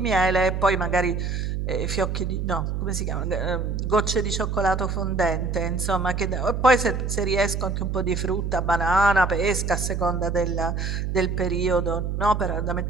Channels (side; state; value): right; noise; hum, 2 dB below the sound